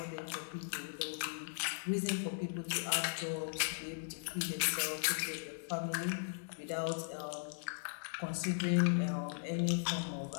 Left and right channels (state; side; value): silent; right; 52 dB below the other